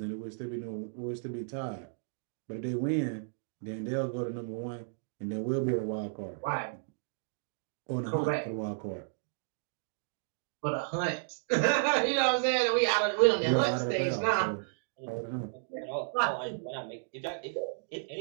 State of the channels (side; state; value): left; silent; digital silence